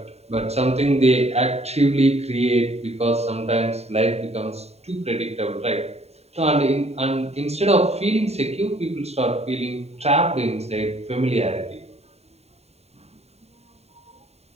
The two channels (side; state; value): left; late; 0.30 ms